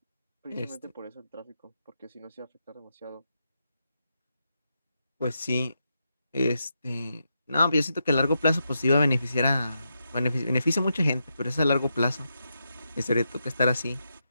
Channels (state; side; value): inverted; both; correlation -0.85